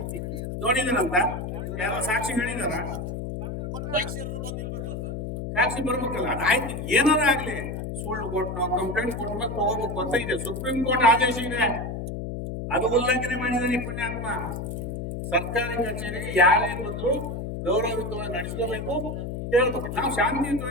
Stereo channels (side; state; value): left; noise; hum, 5 dB below the sound